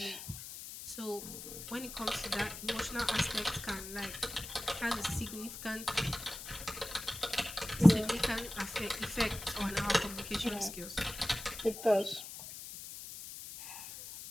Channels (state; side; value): noise; left; hiss, 10 dB below the sound